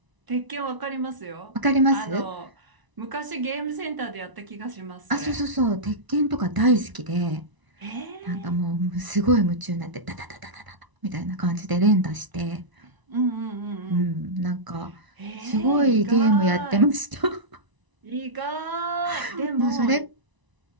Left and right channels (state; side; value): late; left; 1.0 ms